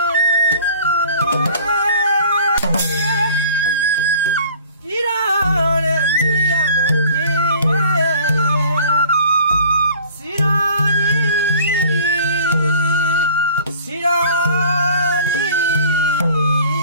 ဒီတော့တဲ့မြည်ရမယ်စီရောစီရော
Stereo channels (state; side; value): inverted; both; correlation -0.48